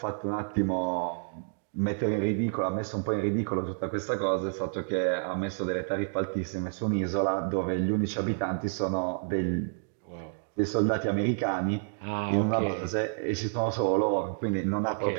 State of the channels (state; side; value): silent; left; digital silence